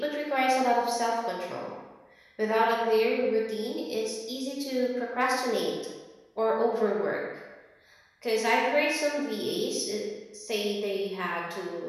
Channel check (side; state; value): both; identical; correlation 1.00